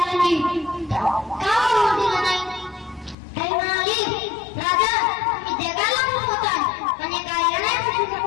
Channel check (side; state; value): right; drops out; at 3.2 s